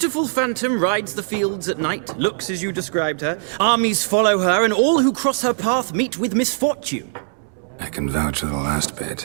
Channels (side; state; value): left; silent; digital silence